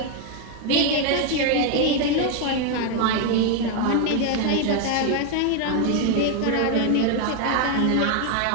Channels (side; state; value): both; different; correlation 0.01